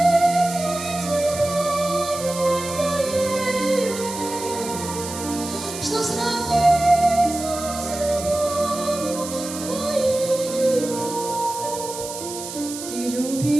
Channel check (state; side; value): noise; right; hiss, 9 dB below the sound